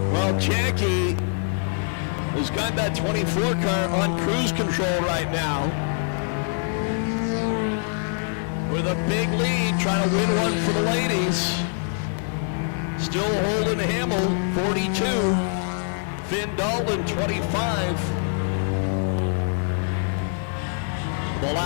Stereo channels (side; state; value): right; silent; 62 dB below the other